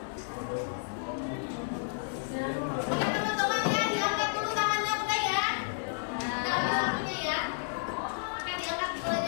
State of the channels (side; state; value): right; silent; digital silence